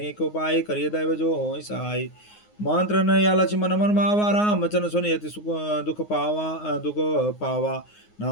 उपाय करिय दैव जो हो सहाय मंत्र न या लक्ष्य मन मन मावा राम वचन सुनि अति सुख दुख पावा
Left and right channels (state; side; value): late; right; 9.6 ms